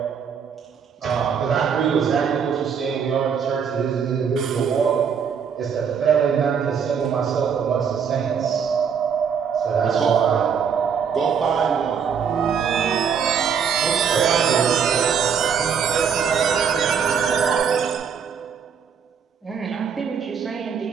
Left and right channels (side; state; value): left; quieter; 7.0 dB